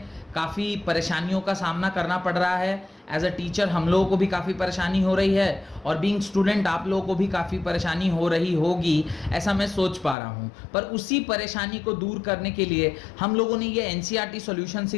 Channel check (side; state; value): right; drops out; at 10.2 s